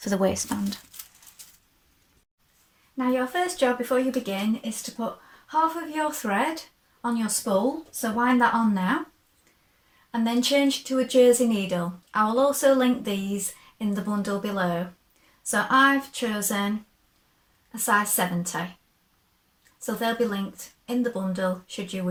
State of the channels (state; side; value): identical; both; correlation 1.00